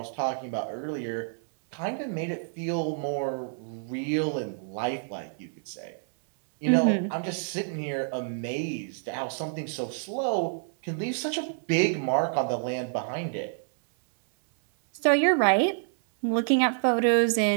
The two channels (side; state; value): left; silent; 59 dB below the other